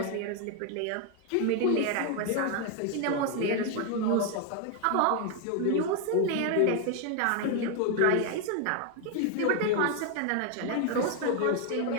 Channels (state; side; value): different; both; correlation 0.01